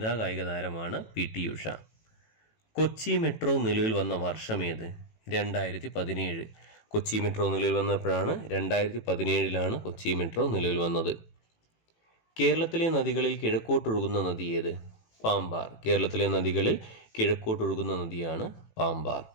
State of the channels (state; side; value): late; right; 18 ms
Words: കായിക താരമാണ് PT ഉഷ. കൊച്ചി മെട്രോ നിലവിൽ വന്ന വർഷമേത്? 2017. കൊച്ചി മെട്രോ നിലവിൽ വന്നപ്പോഴാണ് 2017 കൊച്ചി മെട്രോ നിലവിൽ വന്നത്. കേരളത്തിലെ നദികളിൽ കിഴക്കോട്ടൊഴുകുന്ന നദി ഏത്? പാമ്പാർ. കേരളത്തിലെ നദികളിൽ കിഴക്കോട്ടൊഴുകുന്ന നദിയാണ് പാമ്പാർ.